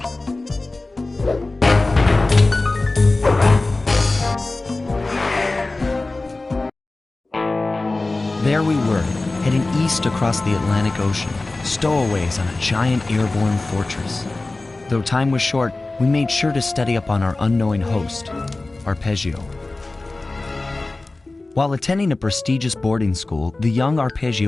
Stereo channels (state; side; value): quieter; right; 3.1 dB